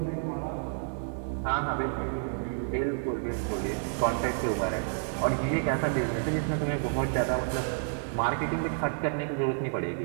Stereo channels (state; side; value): silent; left; digital silence